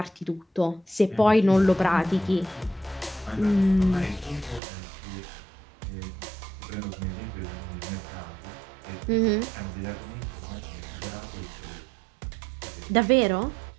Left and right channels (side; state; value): left; drops out; at 4.6 s